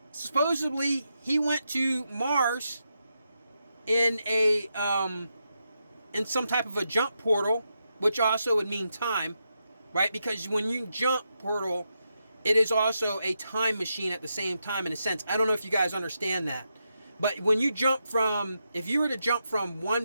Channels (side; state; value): both; inverted; correlation -0.85